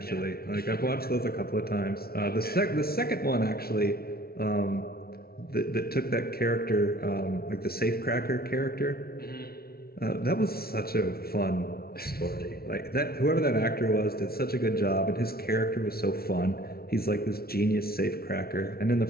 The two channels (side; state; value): right; late; 0.44 ms